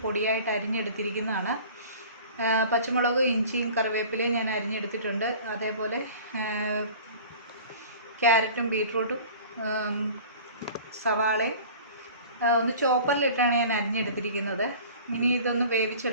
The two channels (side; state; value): both; inverted; correlation -0.43